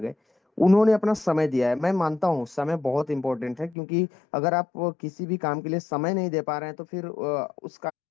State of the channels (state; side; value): drops out; right; at 3.8 s